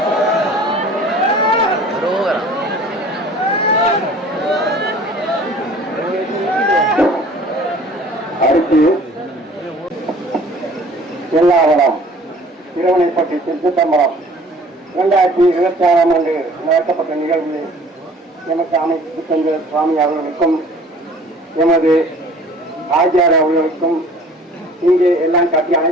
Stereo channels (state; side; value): normal; both; correlation 0.50